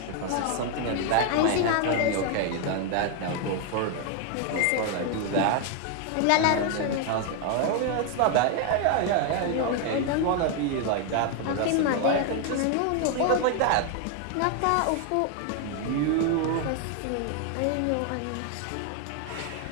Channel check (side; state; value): both; different; correlation 0.01